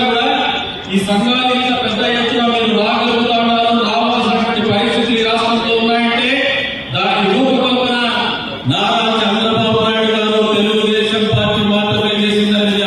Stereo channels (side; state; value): both; identical; correlation 1.00